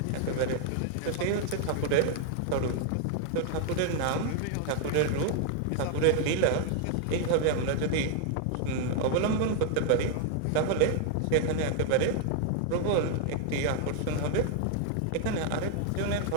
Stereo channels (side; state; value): both; different; correlation 0.00